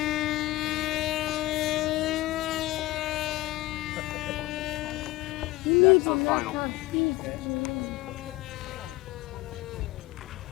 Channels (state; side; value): quieter; right; 18.6 dB